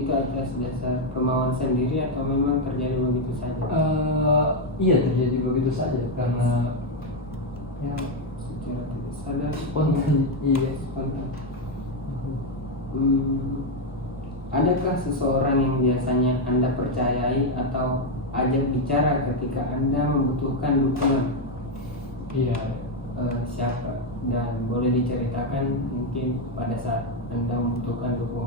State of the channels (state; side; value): normal; both; correlation 0.04